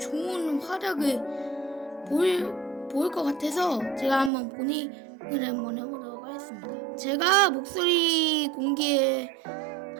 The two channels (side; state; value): left; drops out; at 4.3 s